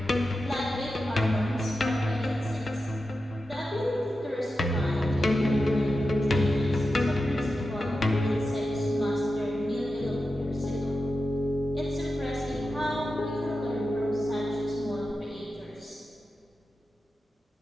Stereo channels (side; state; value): both; normal; correlation 0.91